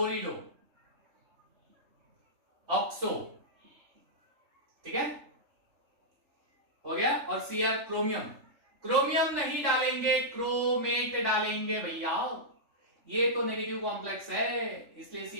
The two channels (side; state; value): left; late; 3.4 ms